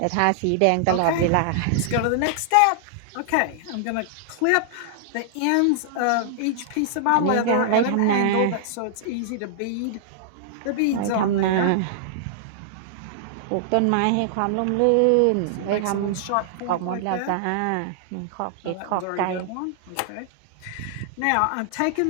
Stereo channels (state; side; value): different; both; correlation -0.01